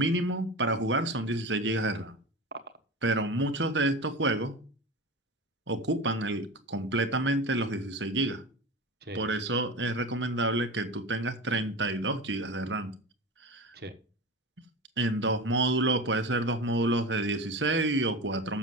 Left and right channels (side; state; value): both; normal; correlation 0.28